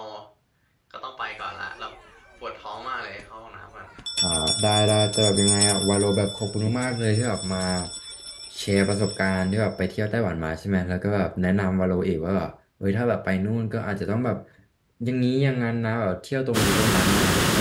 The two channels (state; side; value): identical; both; correlation 1.00